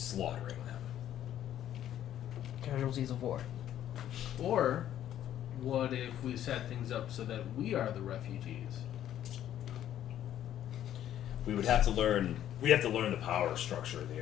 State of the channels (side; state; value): right; quieter; 11.4 dB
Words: them. Casualties of war. Or what if we set things up so that we are the refugees? We would have to learn. We have to learn the power structure of the